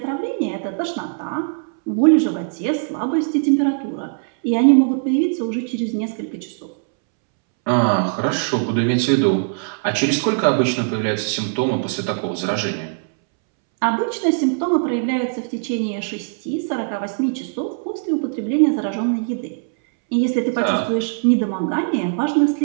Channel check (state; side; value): silent; left; 65 dB below the other